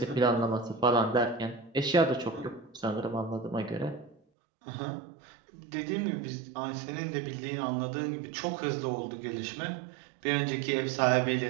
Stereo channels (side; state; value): left; drops out; at 4.2 s